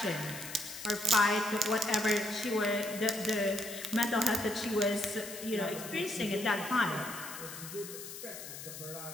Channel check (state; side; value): noise; left; hiss, 11 dB below the sound